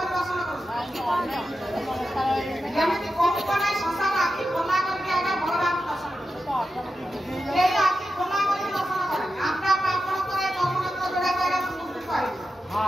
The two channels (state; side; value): normal; both; correlation 0.90